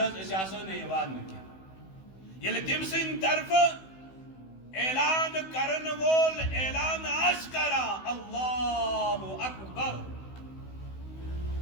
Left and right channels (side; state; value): right; late; 16 ms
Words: اس آسان یوان نکی یل تم سن طرف اعلان کرن وول اعلان اشکرا اللہ اکبر